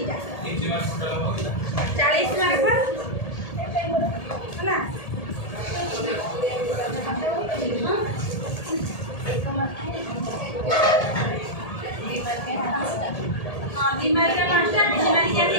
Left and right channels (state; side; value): late; right; 1.8 ms